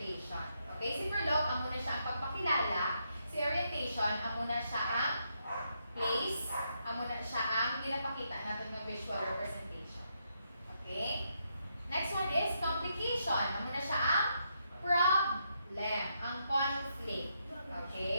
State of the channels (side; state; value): both; inverted; correlation -0.79